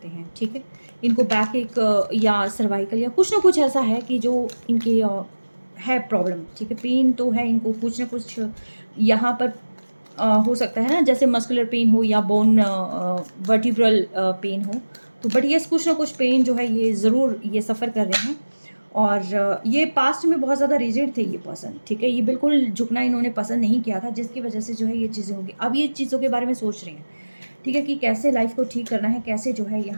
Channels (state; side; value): inverted; both; correlation -1.00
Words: हैं, ठीक है। इनको बैक एक या सर्वाइकल या कुछ ना कुछ ऐसा है कि जो इनके है प्रॉब्लम, ठीक है। पेन तो है इनको कुछ ना कुछ यहाँ पर हो सकता है ना, जैसे मस्कुलर पेन हो या बोन वर्टिब्रल पेन हो। तो बट ये कुछ ना कुछ पेन जो है ये ज़रूर ये सफ़र कर रहे हैं। और ये पास्ट में बहुत ज़्यादा रिजिड थे ये पर्सन, ठीक है। ये बिल्कुल झुकना इन्होंने पसंद नहीं किया था, जिसकी वजह से जो है ये चीज़ें होगी। अब ये चीज़ों के बारे में सोच रहे हैं, ठीक है, कि कैसे लाइफ को ठीक करना है, कैसे जो है